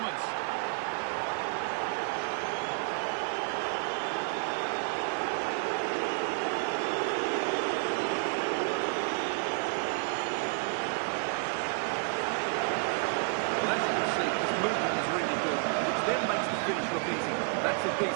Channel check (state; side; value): quieter; left; 39.3 dB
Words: Well, as you can see, his movement is really good, which then makes the finish look easy. That's a